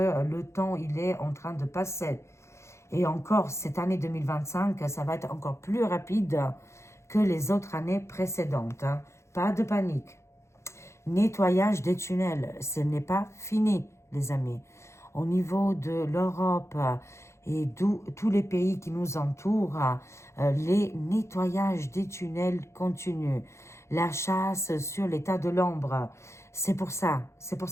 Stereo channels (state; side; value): late; right; 0.13 ms